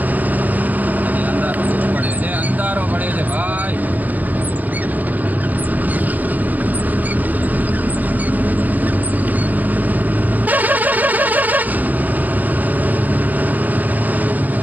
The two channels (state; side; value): late; left; 0.081 ms